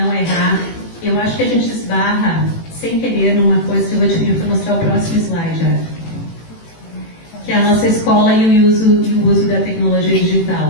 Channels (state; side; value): late; right; 18 ms